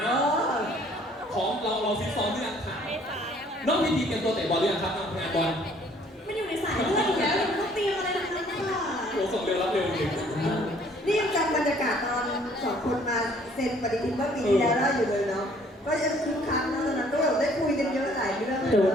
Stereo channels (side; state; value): both; normal; correlation 0.59